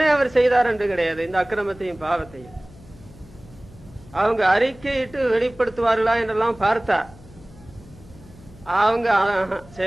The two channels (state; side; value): noise; left; hum, 22 dB below the sound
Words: அவர் செய்தார் என்று கிடையாது. இந்த அக்கிரமத்தையும் பாவத்தையும் அவங்க அறிக்கையிட்டு வெளிப்படுத்துவார்களா என்றெல்லாம் பார்த்தா அவங்க